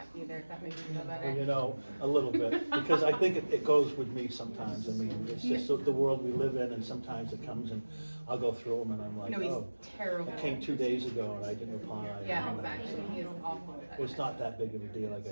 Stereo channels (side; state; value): both; inverted; correlation -1.00